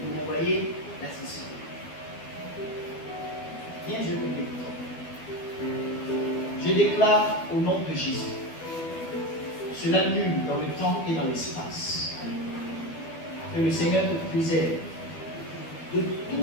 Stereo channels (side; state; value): right; late; 12 ms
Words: Vous voyez la session. Viens, je prie. Je déclare au nom de Jésus. Cela nul dans le temps et dans l'espace. Que le Seigneur te préserve de